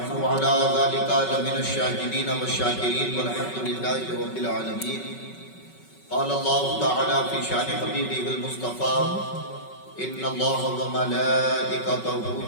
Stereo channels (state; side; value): late; right; 5.3 ms